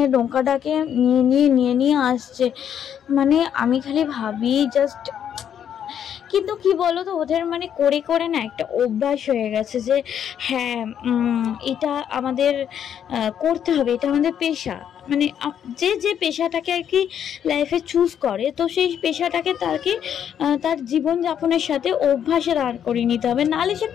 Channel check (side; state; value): right; quieter; 9.0 dB